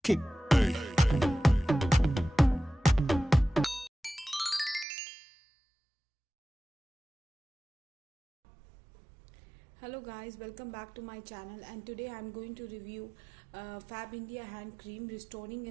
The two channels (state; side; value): drops out; left; at 4.9 s